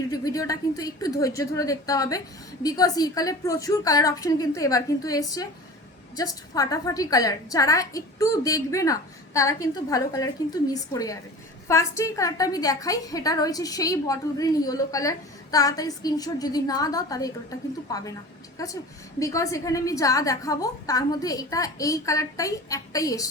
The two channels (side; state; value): both; normal; correlation 0.37